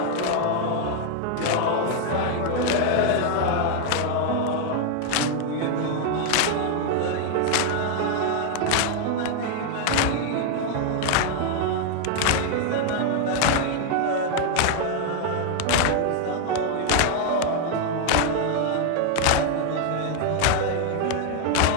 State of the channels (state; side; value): different; both; correlation 0.00